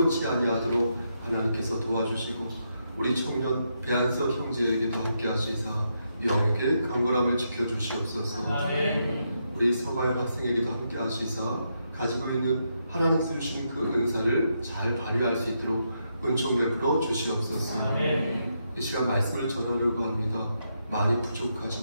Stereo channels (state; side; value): inverted; both; correlation -0.81